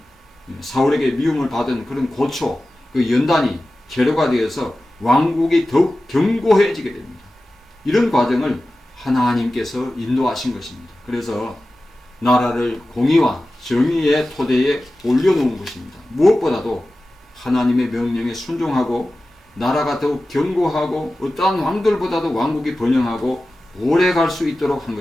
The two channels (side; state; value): both; normal; correlation 0.95